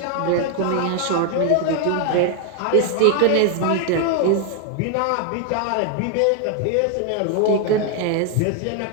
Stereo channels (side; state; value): both; different; correlation 0.00